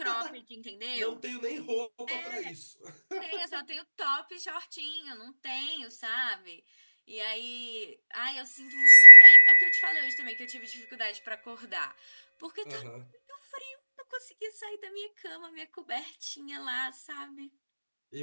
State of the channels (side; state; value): both; inverted; correlation -1.00